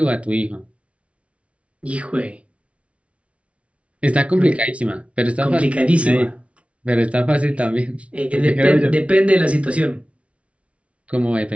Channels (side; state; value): left; late; 0.062 ms